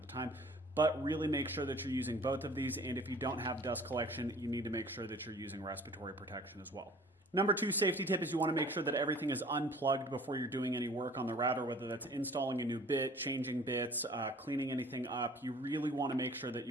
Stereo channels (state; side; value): normal; both; correlation 0.50